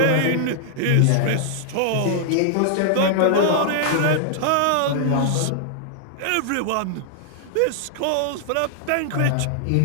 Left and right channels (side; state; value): both; different; correlation -0.01